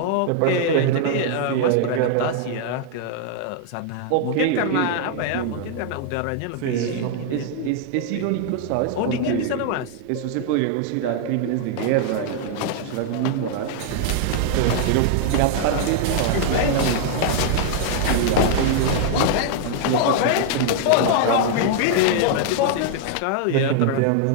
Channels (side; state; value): both; different; correlation 0.00